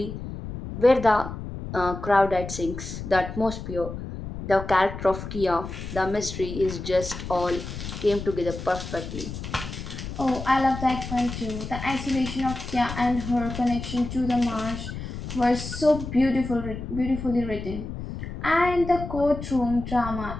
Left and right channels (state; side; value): noise; left; rumble, 8 dB below the sound